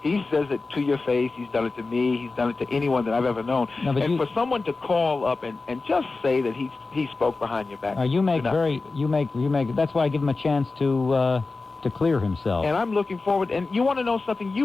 He says it to your face. He's done it to me. He's done it to anyone that I've ever known. No, but and for someone to call up and just say that he spoke behind your back. you make. That's why I give him a chance to clear himself. And I'm looking forward. And you want to know something?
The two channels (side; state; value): right; quieter; 3.7 dB